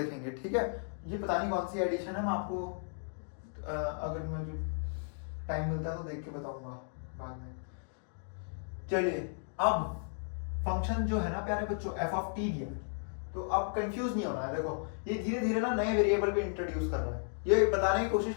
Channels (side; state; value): right; silent; digital silence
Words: ठीक है। ये पता नहीं कौन सी एडिशन है, मैं आपको अगर मुझे टाइम मिलता है तो देख के बताऊंगा बाद में। चलिए अब फंक्शन जो है ना प्यारे बच्चों, एफ ऑफ टी दिया, तो अब कंफ्यूज नहीं होना है। देखो ये धीरे धीरे ना नए वेरिएबल भी इंट्रोड्यूस कर रहा है, ये बताने की कोशिश